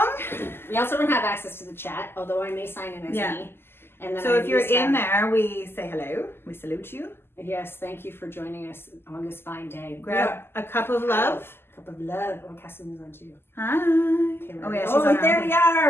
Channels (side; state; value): right; late; 0.11 ms